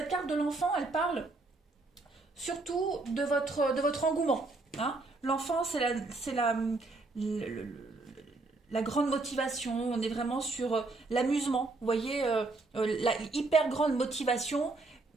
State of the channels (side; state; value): left; quieter; 3.3 dB